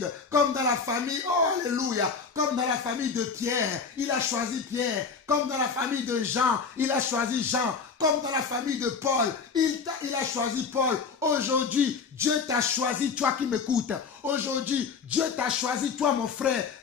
Comme dans la famille, oh alléluia, comme dans la famille de Pierre, il a choisi Pierre. Comme dans la famille de Jean, il a choisi Jean. Comme dans la famille de Paul, il a choisi Paul. Aujourd'hui, Dieu t'a choisi, toi qui m'écoutes. Aujourd'hui, Dieu t'a choisi, toi mon frère,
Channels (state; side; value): quieter; right; 5.4 dB